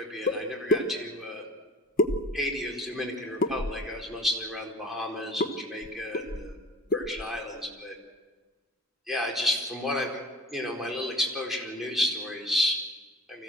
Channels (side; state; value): both; normal; correlation 0.41